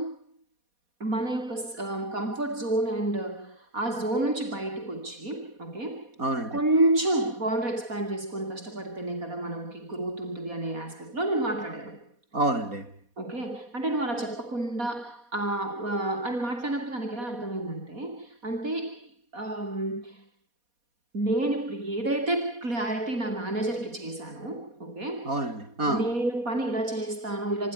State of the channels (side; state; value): left; late; 4.2 ms